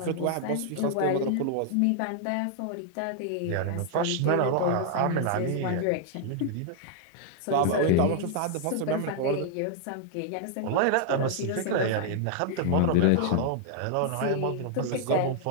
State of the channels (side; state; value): both; different; correlation 0.00